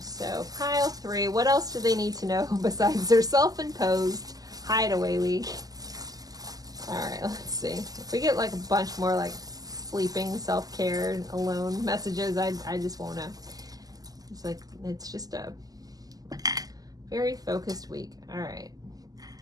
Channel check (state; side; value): late; left; 0.18 ms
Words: So pile 3, what else do they need to know besides their self-imposed hideaway week? All right, let's see. If we get like a bunch more like sleeping, self-care, alone messages, I just won't know. It's like, it's just a very focused week. All right.